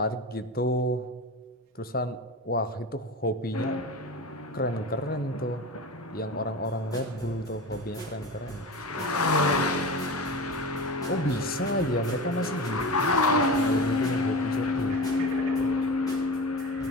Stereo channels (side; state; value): both; normal; correlation 0.28